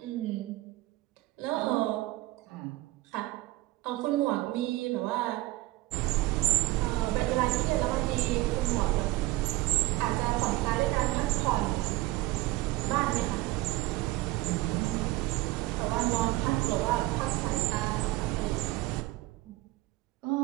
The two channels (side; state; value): left; quieter; 18.8 dB